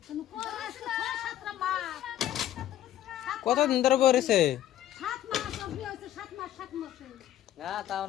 কতদিন ধরে পড়েছে? না তাও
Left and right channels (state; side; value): quieter; right; 12.3 dB